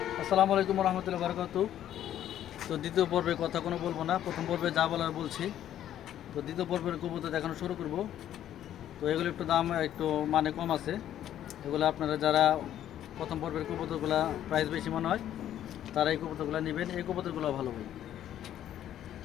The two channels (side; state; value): right; quieter; 11.3 dB